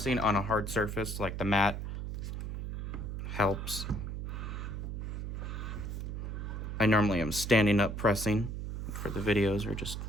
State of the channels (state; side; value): noise; right; hum, 5 dB below the sound